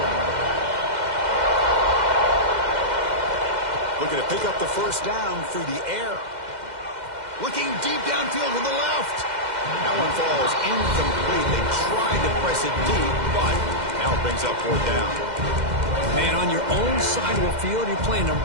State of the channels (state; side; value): late; left; 2.1 ms